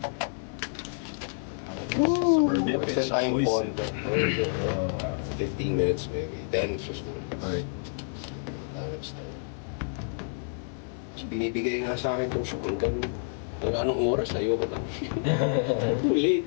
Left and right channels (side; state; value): right; silent; digital silence